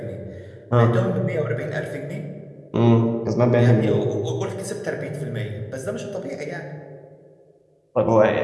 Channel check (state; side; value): identical; both; correlation 1.00